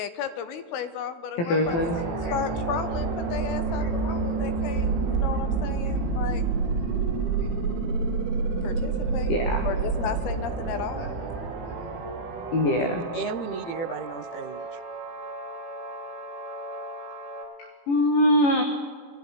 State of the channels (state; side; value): late; right; 18 ms